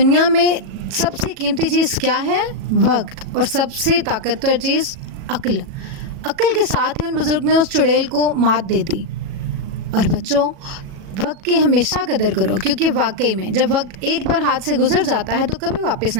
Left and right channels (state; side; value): late; left; 37 ms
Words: میں سب سے قیمتی چیز کیا ہے؟ وقت، اور سب سے طاقتور چیز عقل۔ عقل کے ساتھ ہی ان بزرگ نے اس چڑیل کو مات دے دی۔ اور بچوں، وقت کی ہمیشہ قدر کرو، کیونکہ واقعی میں جب وقت ایک بار ہاتھ سے گزر جاتا ہے تو کبھی واپس